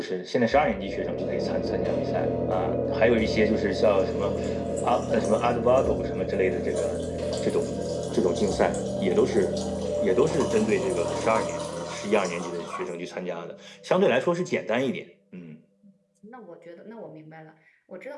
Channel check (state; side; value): identical; both; correlation 1.00